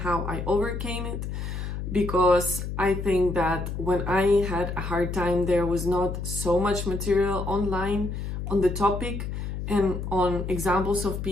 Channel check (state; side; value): noise; left; hum, 5 dB below the sound